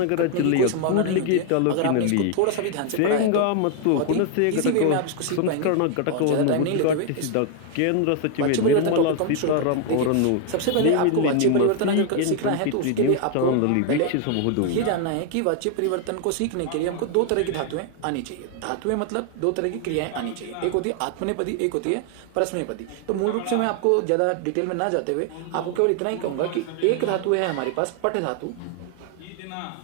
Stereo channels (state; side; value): different; both; correlation 0.00